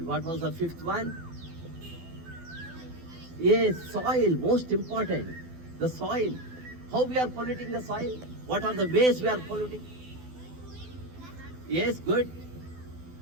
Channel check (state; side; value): late; left; 12 ms